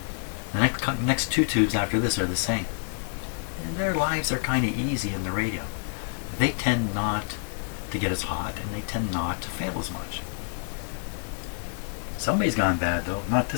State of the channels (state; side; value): silent; right; digital silence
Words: The next two tubes after this are the same. And their lives are kind of easy in the radio. They tend not to get as hot, and they tend not to fail as much. Somebody's gone bad though. Not